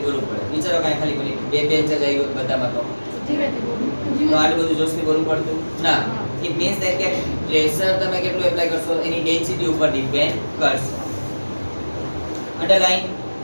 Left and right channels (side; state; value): both; inverted; correlation -1.00